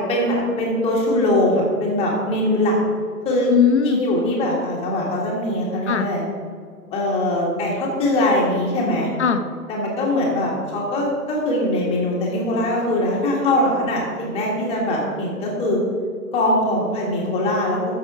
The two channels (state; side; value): normal; both; correlation 0.11